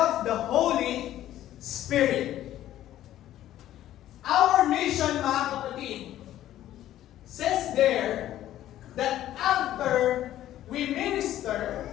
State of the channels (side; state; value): right; quieter; 12.9 dB